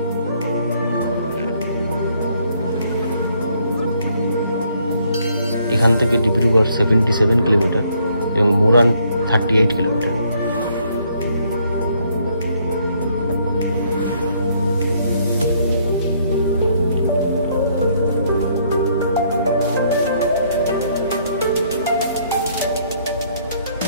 এখান থেকে ডিব্রুগড় 77 কিলোমিটার এবং মোরান 38 কিলোমিটার।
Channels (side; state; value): both; inverted; correlation -0.67